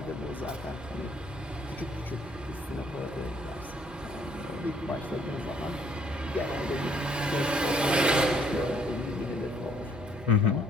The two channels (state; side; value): normal; both; correlation 0.64